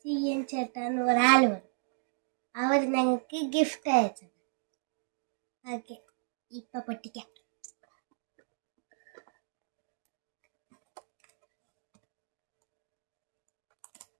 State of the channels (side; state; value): left; silent; digital silence